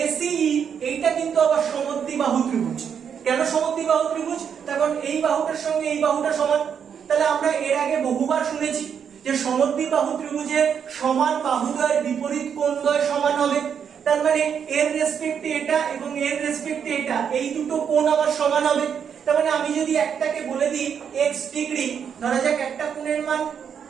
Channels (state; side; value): quieter; left; 7.6 dB